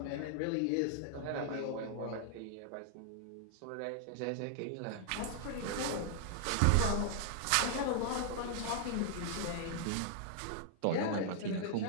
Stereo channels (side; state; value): both; different; correlation 0.00